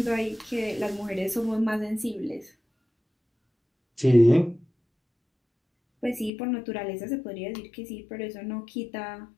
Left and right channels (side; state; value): right; drops out; at 6.3 s